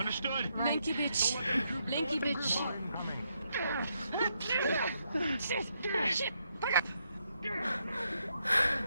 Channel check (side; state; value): both; inverted; correlation -0.78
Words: Lanky bitch. Lanky bitch. Shit. Back up.